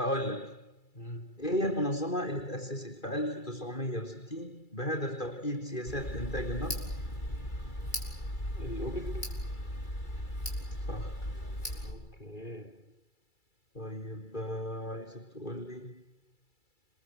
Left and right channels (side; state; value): right; late; 2.3 ms